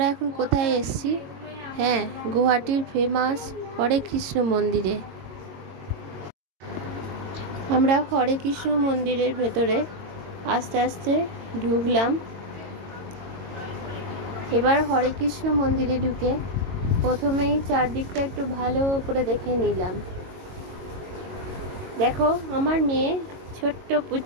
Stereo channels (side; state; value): left; late; 22 ms